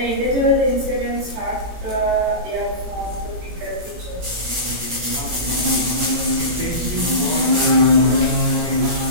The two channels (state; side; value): late; left; 17 ms